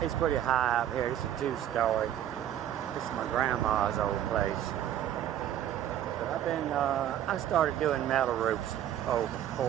It's pretty high up here. It's a two-story. This is my grandma's old place. But I started doing metal roofs over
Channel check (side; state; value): left; quieter; 11.2 dB